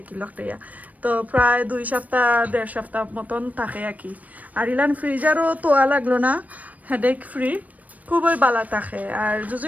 কি লকটাইয়া। তো প্রায় 2 সপ্তাহ 1.5 সপ্তাহ মতন থাকে আর কি। আর ইলান ফ্রিজারও তোয়া লাগলো না, হেডেক ফ্রি, খুবই বালা থাকে। আর যদি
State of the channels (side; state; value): left; late; 0.073 ms